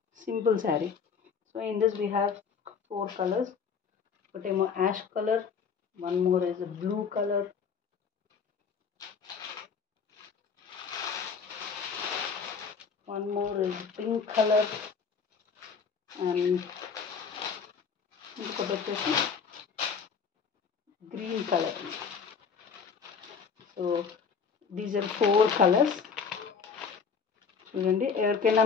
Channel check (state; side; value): quieter; right; 6.0 dB